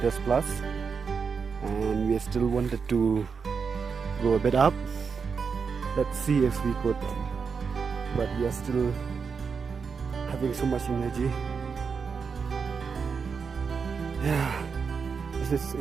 plus, and we still wanted to go a bit up. Let's see if we could, but we are still having so much energy. Yeah, this is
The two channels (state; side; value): quieter; left; 5.7 dB